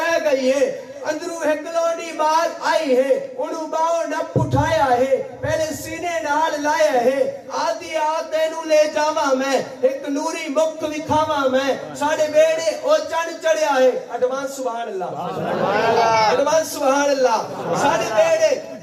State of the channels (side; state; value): both; identical; correlation 1.00